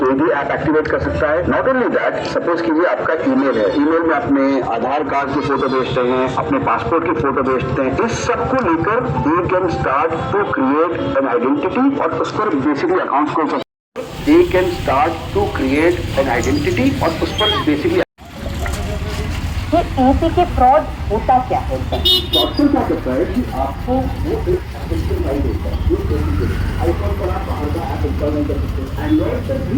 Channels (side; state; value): both; identical; correlation 1.00